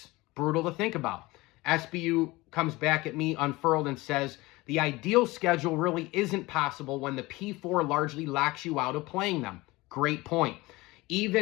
Brutal to think about. SBU comes back at me unfurled and says, The ideal schedule really isn't possible when the P4 largely locks you out of playing them. Great point.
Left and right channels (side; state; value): right; quieter; 21.1 dB